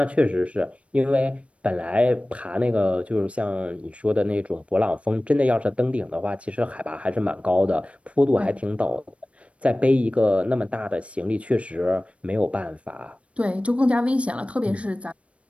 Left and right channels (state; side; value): late; left; 0.062 ms